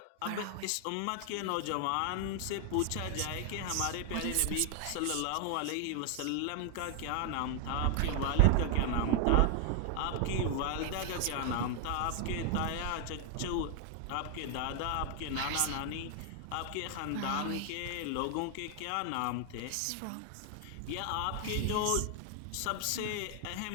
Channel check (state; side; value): different; both; correlation 0.00